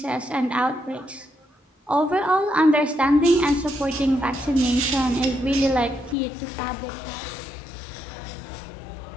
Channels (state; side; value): drops out; right; at 6.2 s